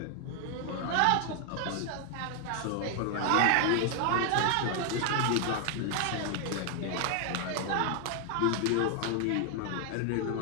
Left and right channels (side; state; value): both; different; correlation 0.00